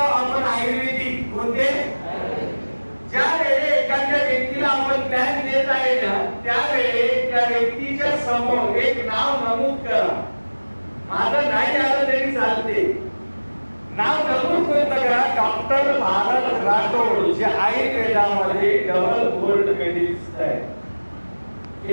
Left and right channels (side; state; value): both; inverted; correlation -1.00